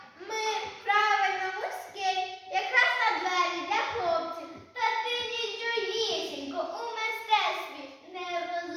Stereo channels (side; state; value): both; identical; correlation 1.00